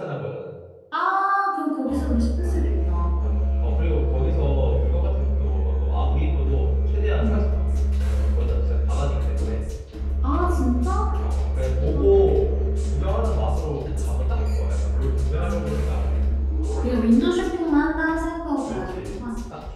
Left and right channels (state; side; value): identical; both; correlation 1.00